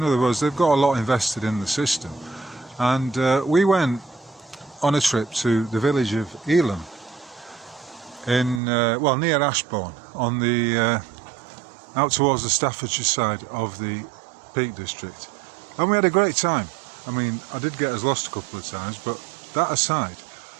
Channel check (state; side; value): drops out; left; at 8.6 s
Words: other words, they've got a lot invested in the system. And we went on a trip to the village of Elam in, well, near Ashbourne, on the out towards the Staffordshire side of the Peak District. And we had a great time. I mean, I did get us lost a couple of times, but that aside,